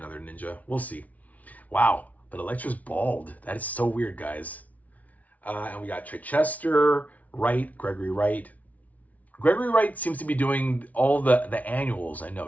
ninja. We'll see. Wow, but Elektra's bald. That is so weird, guys. And we got Chichester, Wright, Gregory Wright. Gregory Wright seems to be doing all the annuals, I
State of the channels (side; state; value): right; late; 0.071 ms